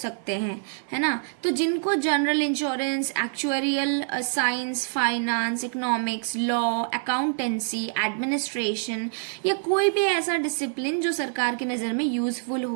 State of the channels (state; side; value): silent; left; 61 dB below the other